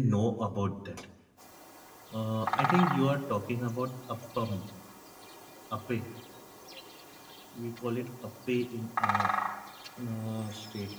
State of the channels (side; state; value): both; identical; correlation 1.00